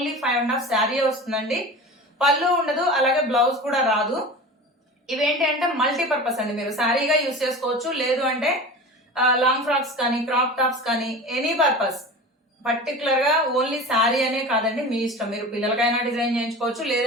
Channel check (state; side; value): normal; both; correlation 0.33